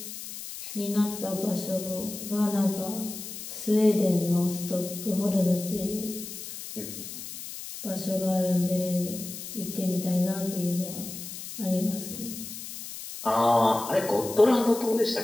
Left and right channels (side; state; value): left; noise; hiss, 10 dB below the sound